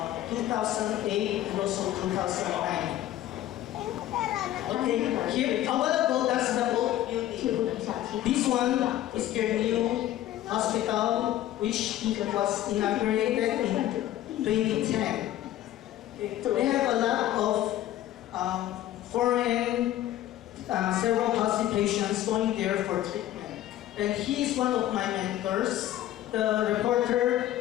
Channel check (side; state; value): right; quieter; 13.3 dB